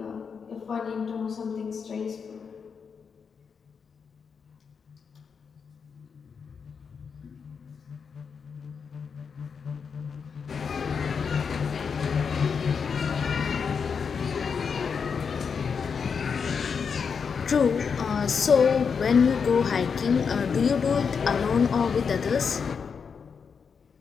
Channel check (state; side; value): quieter; right; 6.1 dB